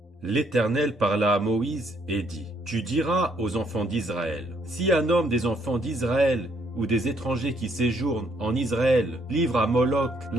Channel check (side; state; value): both; normal; correlation 0.69